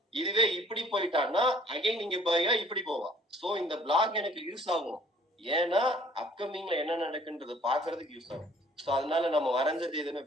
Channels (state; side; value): normal; both; correlation 0.55